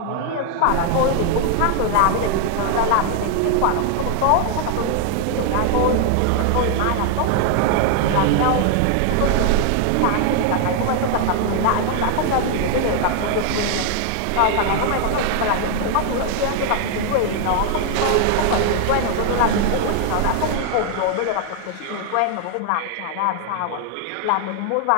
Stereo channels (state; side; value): different; both; correlation 0.00